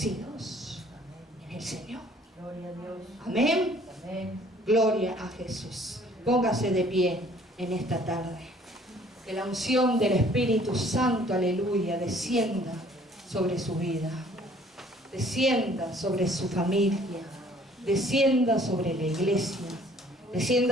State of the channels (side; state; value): both; normal; correlation 0.57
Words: en el Señor. Gloria a Dios. Amén. Amén. Gloria a Jesús. Póngase de pie en esta tarde. Que la unción del Espíritu Santo, aleluya, descienda sobre su vida. Descienda sobre su familia. Descienda sobre la iglesia.